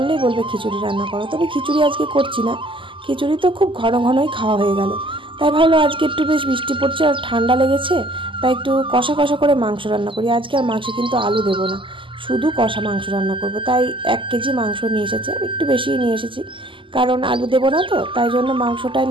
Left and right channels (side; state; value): left; late; 0.25 ms